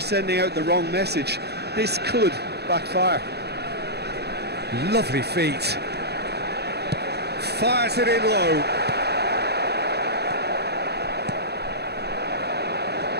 out the wrong message. This could backfire. Lovely feet. Fires it in low.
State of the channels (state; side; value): late; left; 0.48 ms